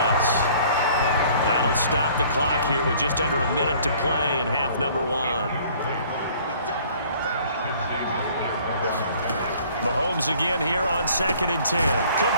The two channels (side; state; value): both; inverted; correlation -0.55